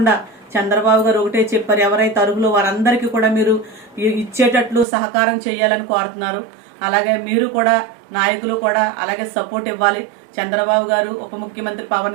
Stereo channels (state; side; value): drops out; left; at 4.9 s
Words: చంద్రబాబు గారు ఒకటే చెప్పారు, ఎవరైతే అర్హులు వారందరికీ కూడా మీరు ఇచ్చేటట్లు సహకారం చేయాలని కోరుతున్నారు. అలాగే మీరు కూడా నాయకులు కూడా అలాగే సపోర్ట్ ఇవ్వాలి. చంద్రబాబు గారు, ఉప ముఖ్యమంత్రి